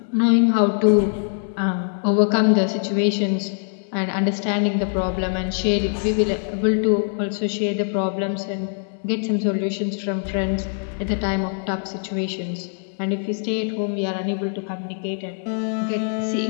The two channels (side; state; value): right; silent; 64 dB below the other